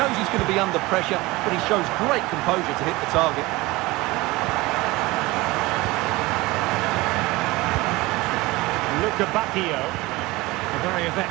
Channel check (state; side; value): quieter; left; 21.1 dB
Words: he's going to be under pressure, but he shows great composure to hit the target. Vecchio, a very